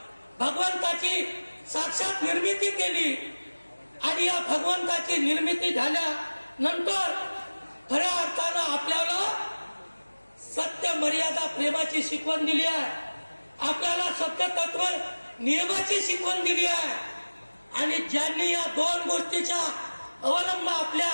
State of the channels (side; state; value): both; inverted; correlation -1.00